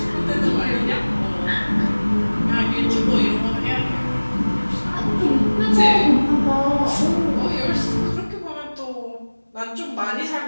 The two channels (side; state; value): both; inverted; correlation -1.00